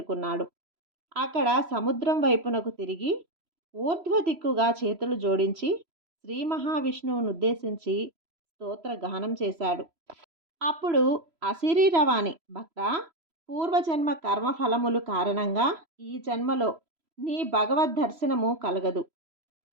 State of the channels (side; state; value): left; late; 3.0 ms